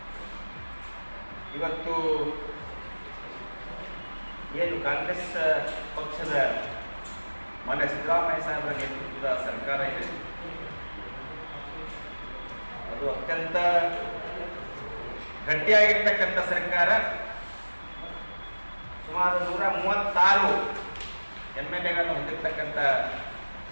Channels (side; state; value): both; inverted; correlation -1.00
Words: ಇವತ್ತು ಏನು ಕಾಂಗ್ರೆಸ್ ಪಕ್ಷದ ಮಾನ್ಯ ಸಿದ್ದರಾಮಯ್ಯ ಸಾಹೇಬರ ನೇತೃತ್ವದ ಸರ್ಕಾರ ಇದೆ, ಅದು ಅತ್ಯಂತ ಗಟ್ಟಿಯಾಗಿರ್ತಕ್ಕಂಥ ಸರ್ಕಾರ. ಸುಮಾರು 136 MLAಗಳನ್ನು ಹೊಂದಿರತಕ್ಕಂಥ